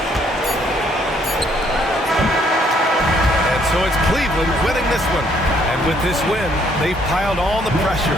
And so it's Cleveland winning this one. And with this win, they've piled on the pressure.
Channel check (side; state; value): both; normal; correlation 0.67